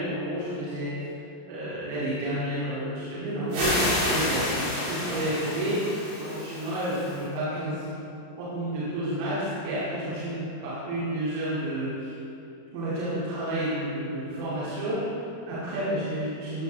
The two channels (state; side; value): late; left; 34 ms